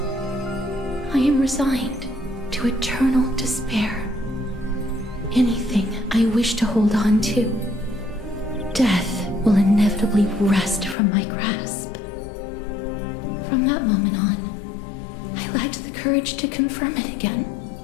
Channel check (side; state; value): right; drops out; at 11.0 s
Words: I am resigned to eternal despair. Anything I wish to hold on to, death will inevitably wrest from my grasp. From that moment on, I lacked the courage to confirm it again.